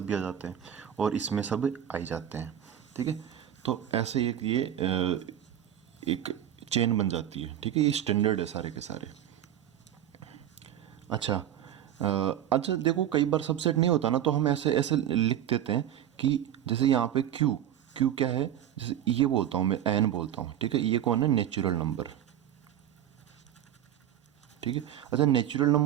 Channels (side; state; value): left; quieter; 10.8 dB